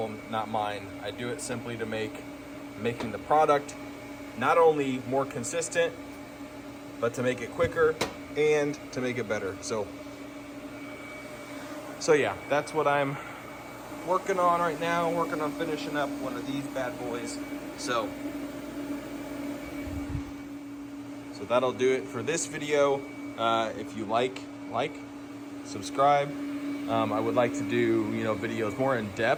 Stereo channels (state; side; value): identical; both; correlation 1.00